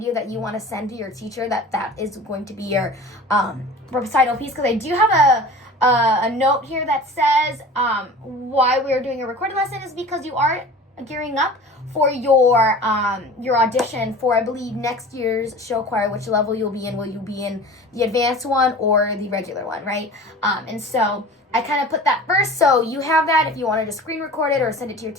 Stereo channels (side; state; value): both; normal; correlation 0.40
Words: that you want to send to your teacher, that is going to be your recital piece. Because I do have a note here that says why we're doing a recorded lesson is because you are gearing up for your audition for, I believe, next year's show choir. Which level you'll be in? Will you be in the advanced one or the regular one, right? And so I kind of put that first, so you have that. If you wanted to screen record it or send it to your